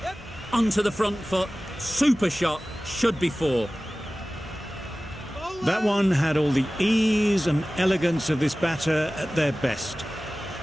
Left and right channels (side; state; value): both; normal; correlation 0.97